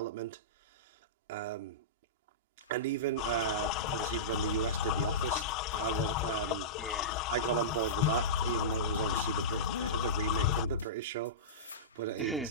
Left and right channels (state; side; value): normal; both; correlation -0.18